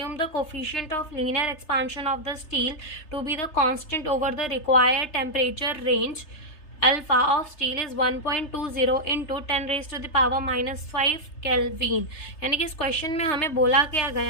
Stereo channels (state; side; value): late; right; 3.3 ms